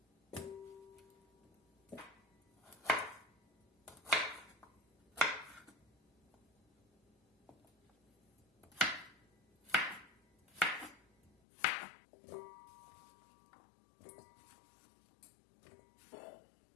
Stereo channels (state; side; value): drops out; right; at 11.3 s